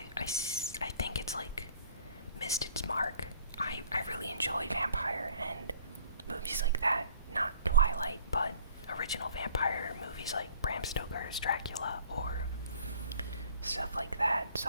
think it's missed its mark. I really enjoy vampire and movies like that. Not Twilight, but original vampire movies like Bram Stoker's Dracula or stuff like that.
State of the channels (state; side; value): inverted; both; correlation -0.54